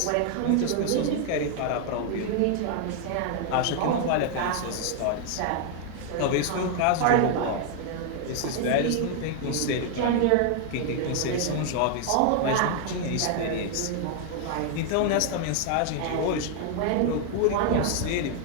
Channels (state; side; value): different; both; correlation 0.00